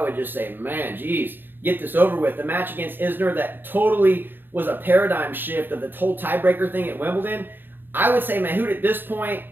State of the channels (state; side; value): late; left; 0.095 ms